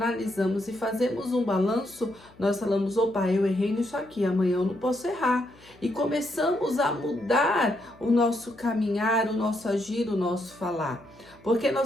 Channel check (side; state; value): left; noise; hum, 26 dB below the sound